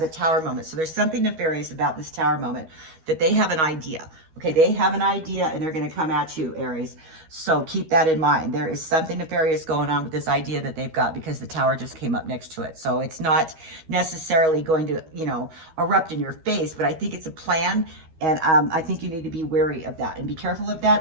a tower moment. So there's something nefarious about this tower moment, that they have an idea. Okay, they have an idea, and they're going to come at you, Aries. So keep that in mind. There is something nefarious going on with this idea that they've got, because the tower just came up next to it. So it's not necessarily going to, you know, erupt in your face, but I think it's a plan. And I think you need to be wary of that, and be careful of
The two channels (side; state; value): left; late; 13 ms